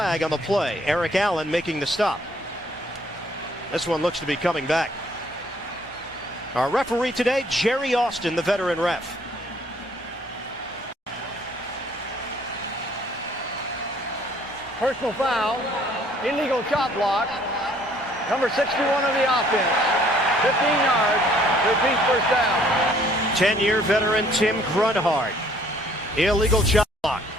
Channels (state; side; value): normal; both; correlation 0.61